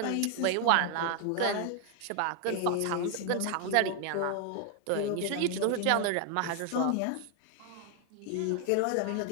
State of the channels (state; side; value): different; both; correlation 0.00